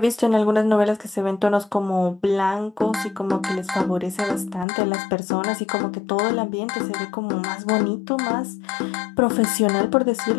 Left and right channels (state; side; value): drops out; right; at 4.7 s